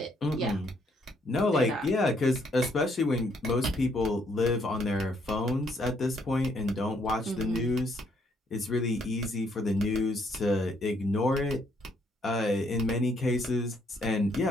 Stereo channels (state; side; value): normal; both; correlation 0.70